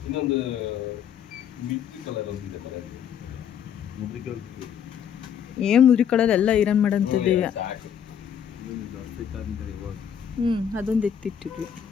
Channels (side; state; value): right; quieter; 8.5 dB